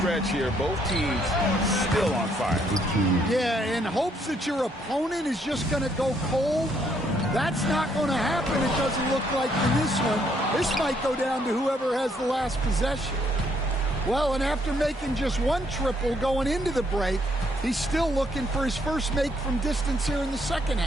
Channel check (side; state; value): both; normal; correlation 0.70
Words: here, both teams still on fire. Yeah, in hopes that your opponent is just going to go cold. That's not going to happen, it doesn't look like in this one. This might go down to whoever has the last possession. Well, and after making just 1 triple going into the break, he's still looking for his first make from distance here in the second